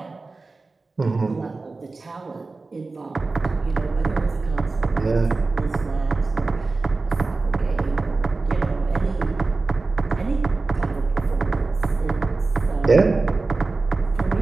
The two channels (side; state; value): left; quieter; 3.7 dB